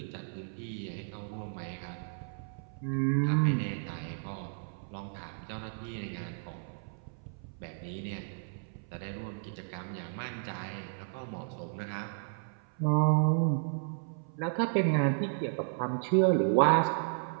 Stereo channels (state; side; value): silent; left; 56 dB below the other